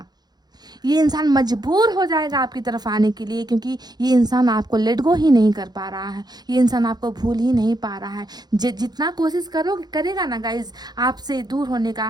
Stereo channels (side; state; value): left; late; 0.20 ms